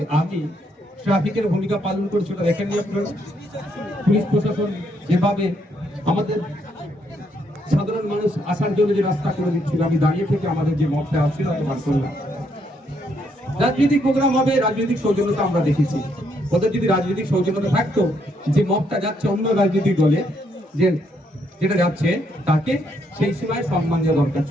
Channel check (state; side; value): normal; both; correlation 0.74